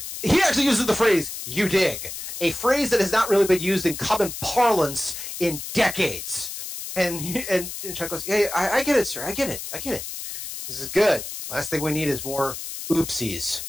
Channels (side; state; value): left; noise; hiss, 8 dB below the sound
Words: He actually uses the phrase, you dig, a phrase that has not really been used in common parlance in decades. And Chuck goes, yeah, I get it, sir. I get it. This is good. Last thing we need is more oopsies.